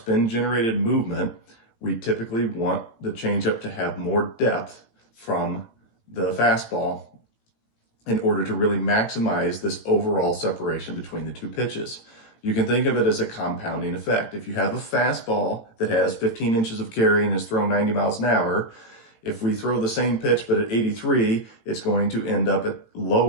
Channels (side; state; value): right; late; 18 ms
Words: movement, we typically want the ChangeUp to have more depth from the fastball in order to really maximize this overall separation between the two pitches. You can think of it as a compounding effect. If you have a fastball that has 15 inches of carry and is thrown 90 miles an hour, if we throw the same pitch but at 83, it's going to end up at